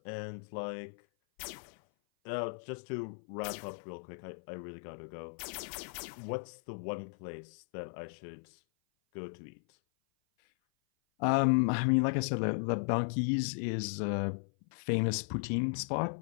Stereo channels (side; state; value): right; silent; 54 dB below the other